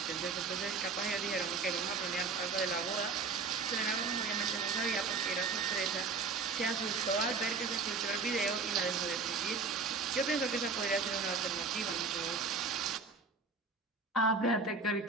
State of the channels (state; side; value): quieter; left; 4.3 dB